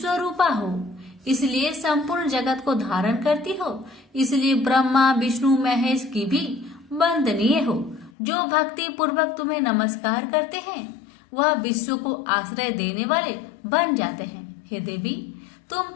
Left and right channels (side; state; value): right; drops out; at 8.1 s